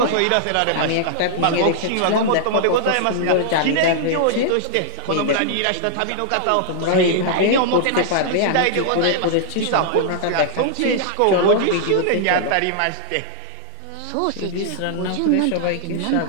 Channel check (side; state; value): both; different; correlation -0.01